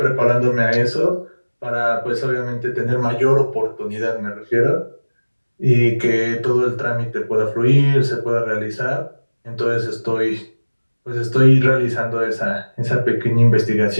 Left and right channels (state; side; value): inverted; both; correlation -1.00